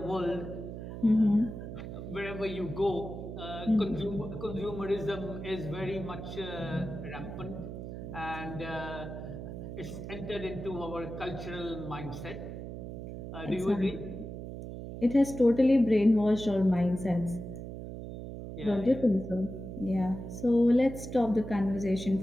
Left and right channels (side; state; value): right; noise; hum, 9 dB below the sound